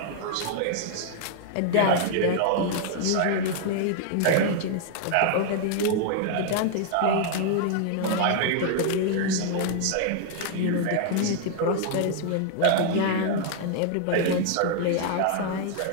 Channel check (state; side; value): different; both; correlation 0.00